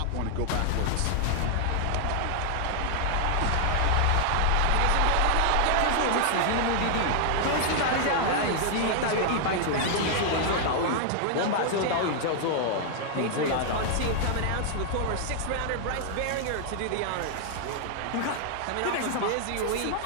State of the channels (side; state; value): both; different; correlation -0.01